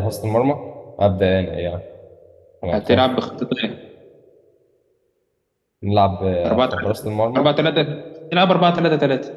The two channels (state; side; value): identical; both; correlation 1.00